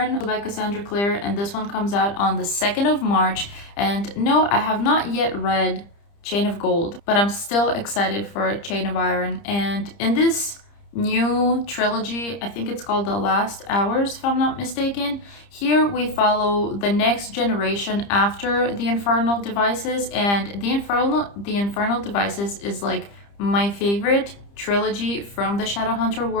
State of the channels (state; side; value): late; right; 30 ms